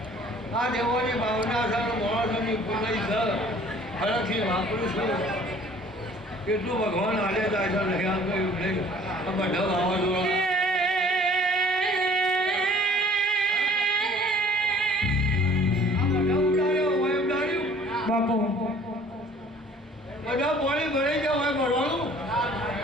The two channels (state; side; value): normal; both; correlation 0.52